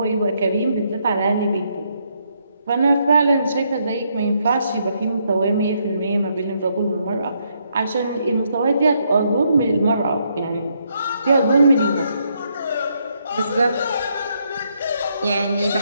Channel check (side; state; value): both; inverted; correlation -0.75